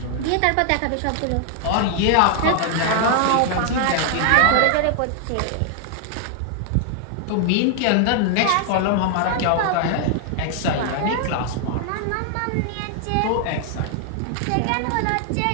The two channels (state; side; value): different; both; correlation 0.00